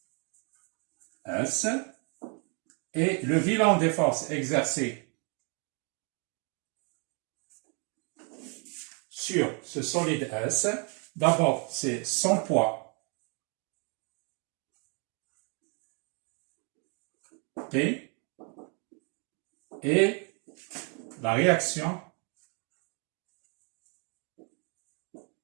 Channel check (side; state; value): left; quieter; 36.4 dB